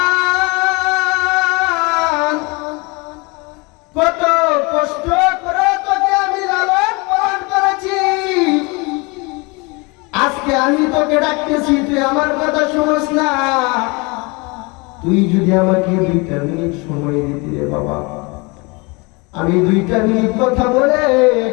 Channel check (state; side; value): quieter; right; 27.8 dB